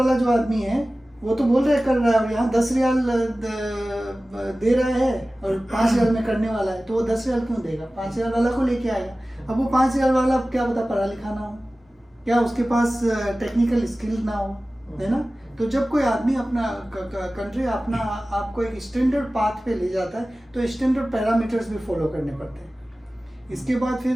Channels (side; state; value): both; normal; correlation 0.97